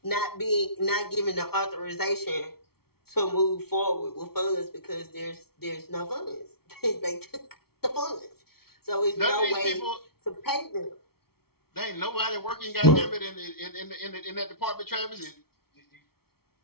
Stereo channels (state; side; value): late; right; 0.95 ms